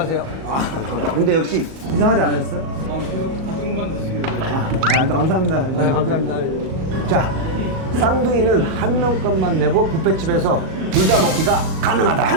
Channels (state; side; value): late; left; 37 ms